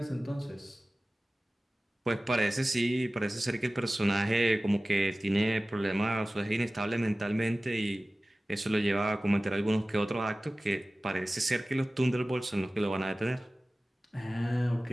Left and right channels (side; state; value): both; normal; correlation 0.97